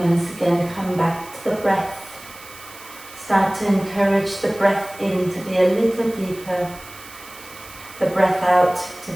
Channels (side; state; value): right; noise; hiss, 18 dB below the sound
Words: again, come back to the breath. Start to encourage the breath in to be a little deeper, the breath out to